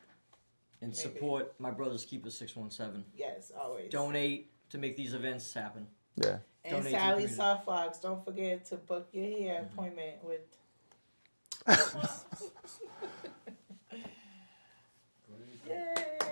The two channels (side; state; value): both; inverted; correlation -1.00